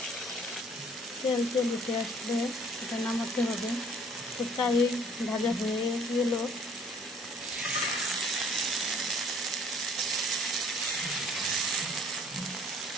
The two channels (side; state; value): both; normal; correlation 0.56